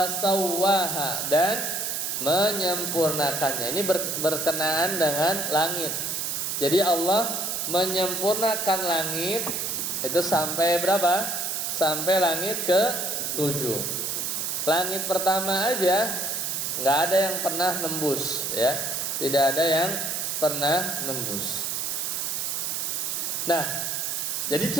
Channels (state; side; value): noise; right; hiss, 1 dB below the sound